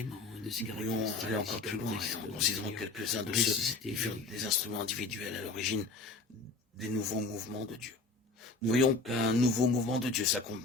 et de ses Nous pourrions caractéristiques. aller encore plus loin caractéristiques en de considérant Seigneur. quelques-uns de ceux Ressuscité qui furent vivant. des instruments individuels à l'origine des nouveaux mouvements de Dieu. Nous voyons qu'un nouveau mouvement de Dieu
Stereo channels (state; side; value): quieter; right; 3.6 dB